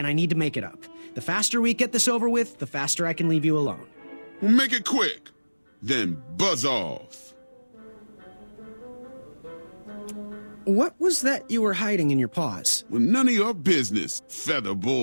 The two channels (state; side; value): inverted; both; correlation -1.00